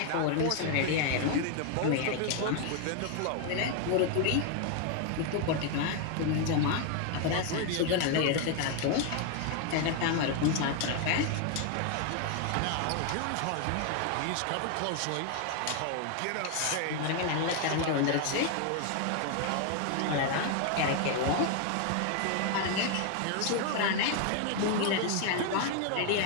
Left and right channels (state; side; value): different; both; correlation 0.01